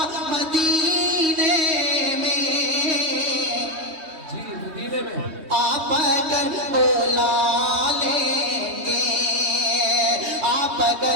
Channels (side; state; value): left; late; 3.2 ms